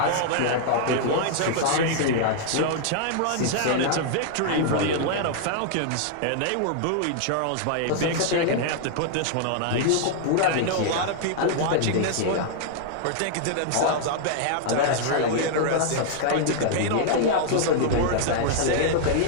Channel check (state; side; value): different; both; correlation -0.01